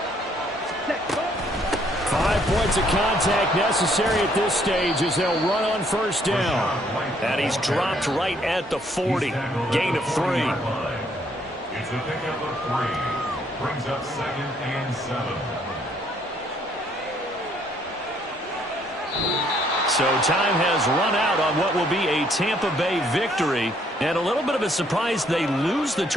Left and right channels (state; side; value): normal; both; correlation 0.67